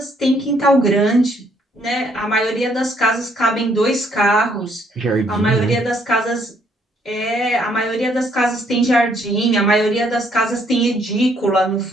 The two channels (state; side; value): normal; both; correlation 0.68